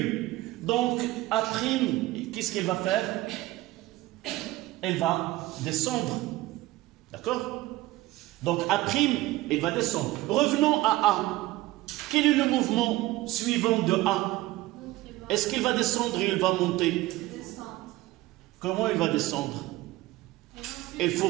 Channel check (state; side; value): quieter; left; 17.8 dB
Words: Donc A', qu'est-ce qu'elle va faire? Elle va descendre. D'accord? Donc A', elle va descendre. Revenons à A. Quel est le mouvement suivant de A? Est-ce qu'il va descendre ou il va monter? Comment il va descendre? Il faut